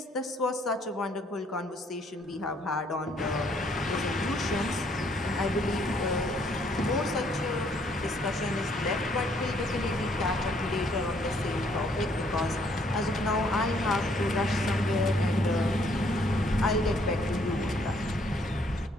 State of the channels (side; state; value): both; normal; correlation 0.66